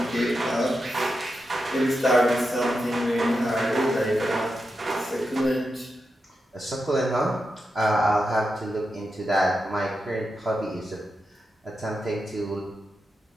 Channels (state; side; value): normal; both; correlation 0.88